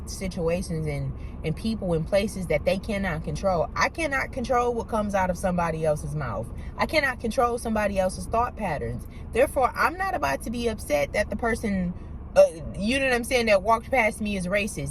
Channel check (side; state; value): both; identical; correlation 1.00